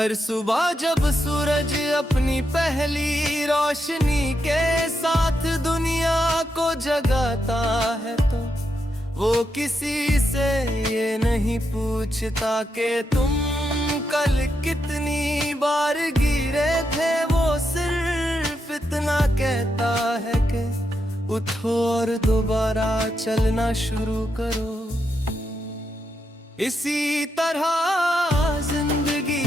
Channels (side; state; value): both; normal; correlation 0.83